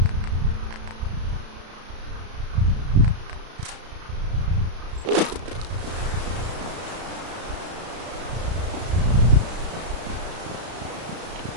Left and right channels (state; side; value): late; left; 33 ms